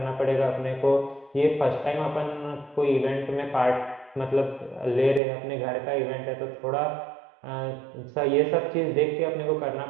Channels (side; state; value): left; drops out; at 5.2 s